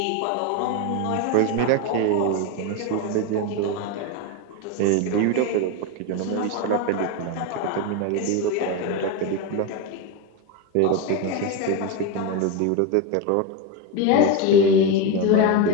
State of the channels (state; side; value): different; both; correlation 0.04